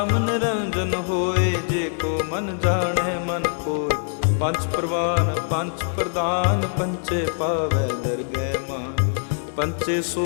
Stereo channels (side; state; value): right; silent; 63 dB below the other